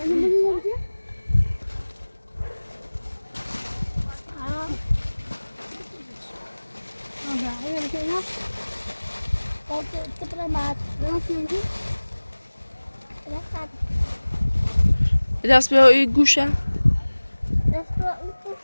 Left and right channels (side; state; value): both; inverted; correlation -1.00